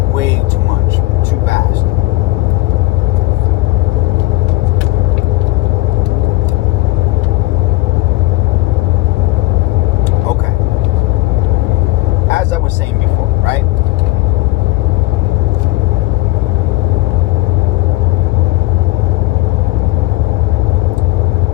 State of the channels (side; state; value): right; quieter; 18.6 dB